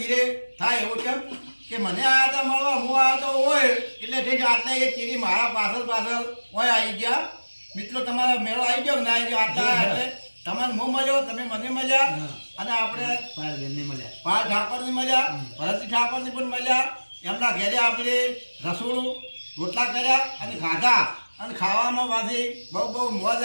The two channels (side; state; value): both; inverted; correlation -1.00